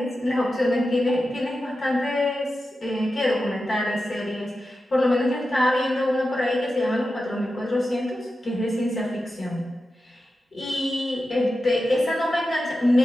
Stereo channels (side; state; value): both; normal; correlation 0.91